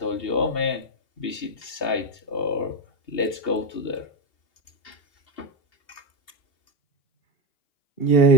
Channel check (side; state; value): right; late; 2.7 ms